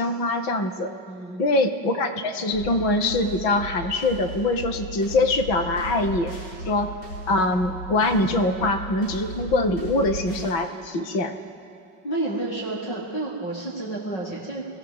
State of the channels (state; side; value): late; right; 5.3 ms